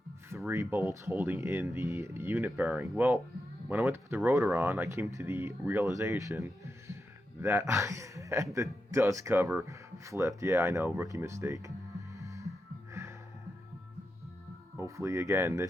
3 bolts holding in the unit bearing. Well, when I went to put the rotor on, I came to the realization that I had the dust cover flipped. Yeah, I know, rookie mistake. Hopefully, again,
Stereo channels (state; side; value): normal; both; correlation 0.87